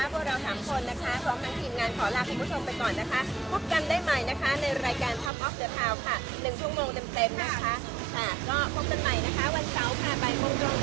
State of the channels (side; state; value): left; drops out; at 5.3 s